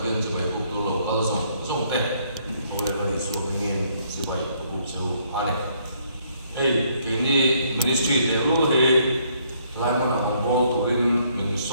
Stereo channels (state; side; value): inverted; both; correlation -0.68